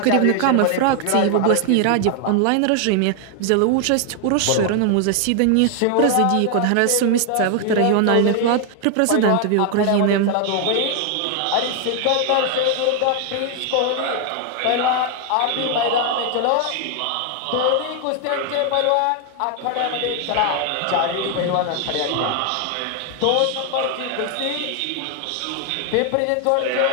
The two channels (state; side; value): different; both; correlation 0.00